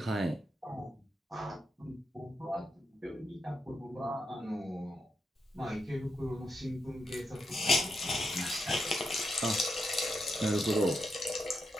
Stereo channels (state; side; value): normal; both; correlation 0.83